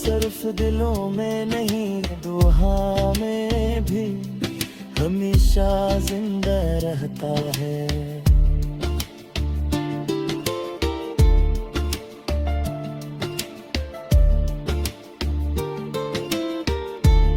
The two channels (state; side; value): identical; both; correlation 1.00